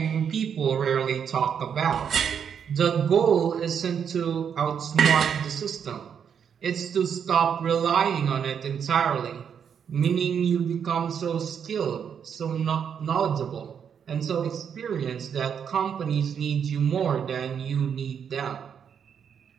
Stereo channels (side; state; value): left; quieter; 7.6 dB